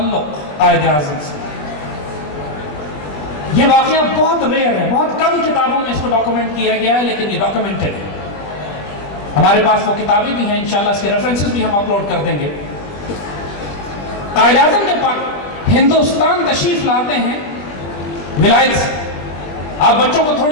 قائد اعظم سے۔ یہ واقعہ بہت ریئر ہے، بہت کم کتابوں میں اس کو ڈاکومنٹ کیا گیا ہے، لیکن یہ ڈاکومنٹڈ ہے۔ ہمارے پاس وہ کتابیں بھی ہیں، انشاءاللہ اس کے ریفرنسز بھی ہم اپلوڈ کر دیں گے۔ قائد اعظم جب ہندوستان تشریف لاتے ہیں ولایت سے، آپ بچوں کو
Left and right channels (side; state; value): right; late; 20 ms